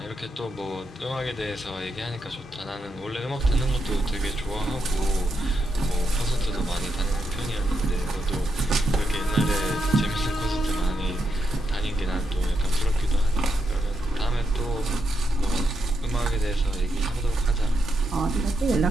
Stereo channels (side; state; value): both; normal; correlation 0.83